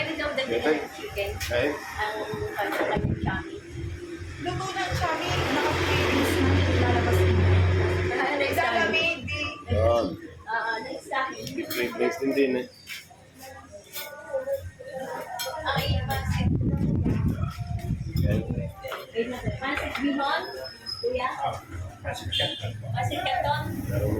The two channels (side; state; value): both; identical; correlation 1.00